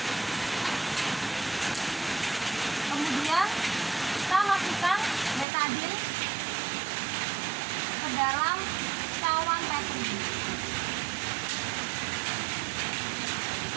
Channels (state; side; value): drops out; left; at 5.5 s